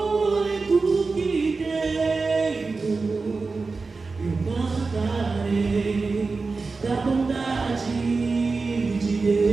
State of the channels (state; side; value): quieter; left; 4.1 dB